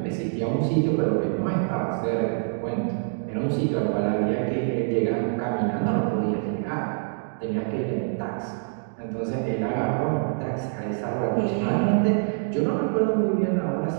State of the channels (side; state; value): left; silent; digital silence